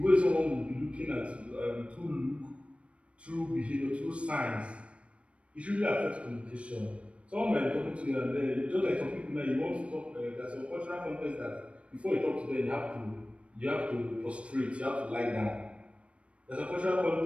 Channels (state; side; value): late; left; 0.061 ms